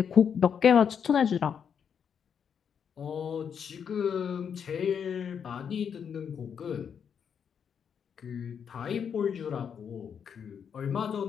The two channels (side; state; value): right; quieter; 7.4 dB